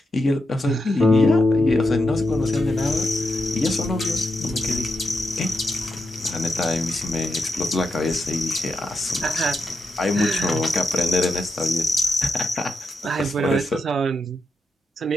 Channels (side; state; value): both; normal; correlation 0.85